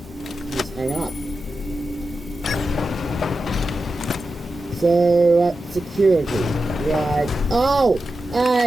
Just hang up. So, security. Right. Oh!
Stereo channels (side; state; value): both; normal; correlation 0.91